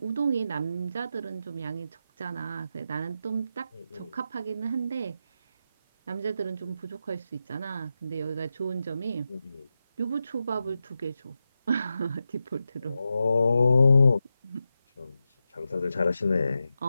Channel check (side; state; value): both; inverted; correlation -0.89